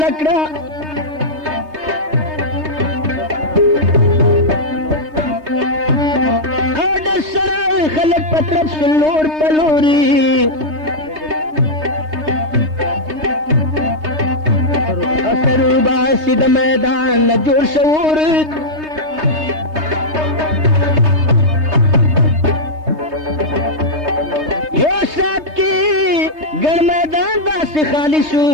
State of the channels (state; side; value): late; left; 3.2 ms